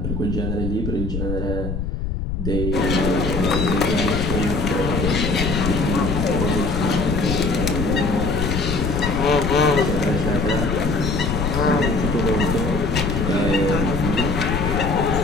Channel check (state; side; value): noise; left; rumble, 3 dB below the sound